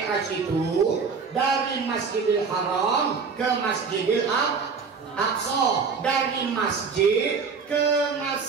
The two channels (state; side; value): quieter; left; 5.4 dB